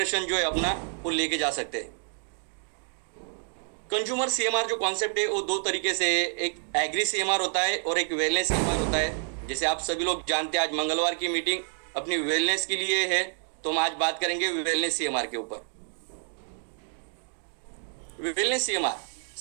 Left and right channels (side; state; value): left; silent; 59 dB below the other